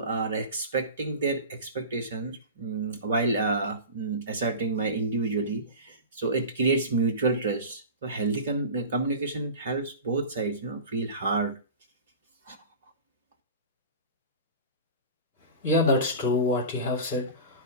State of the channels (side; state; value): both; inverted; correlation -0.32